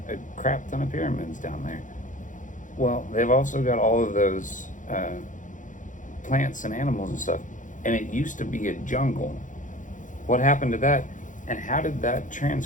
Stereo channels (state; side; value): late; right; 0.37 ms